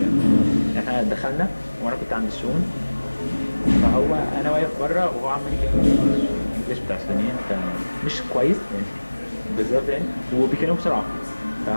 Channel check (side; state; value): both; inverted; correlation -1.00